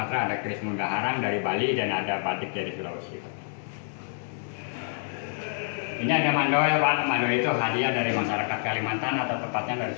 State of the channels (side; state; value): right; silent; 60 dB below the other